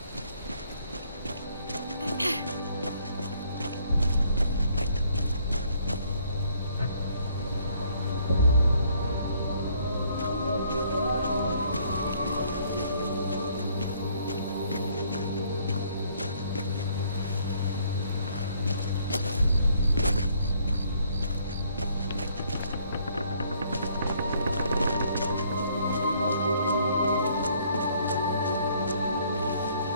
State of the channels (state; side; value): inverted; both; correlation -0.65